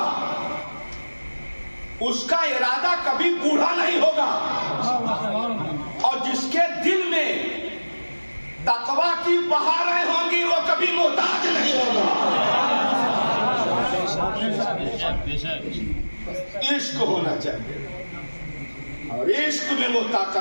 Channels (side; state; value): both; inverted; correlation -1.00